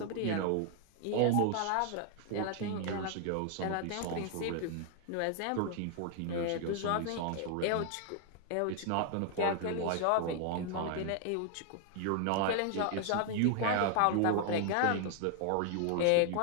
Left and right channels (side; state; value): both; different; correlation 0.00